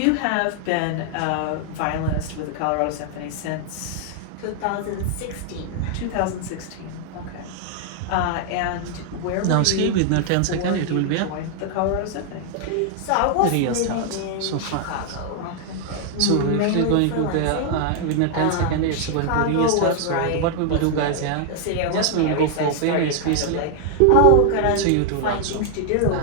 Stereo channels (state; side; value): different; both; correlation 0.00